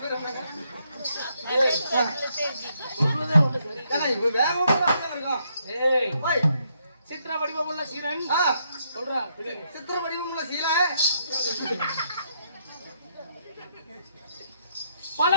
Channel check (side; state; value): both; inverted; correlation -0.74